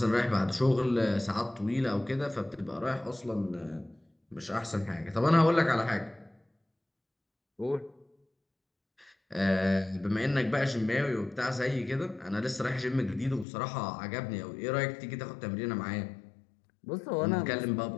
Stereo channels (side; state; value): right; drops out; at 13.5 s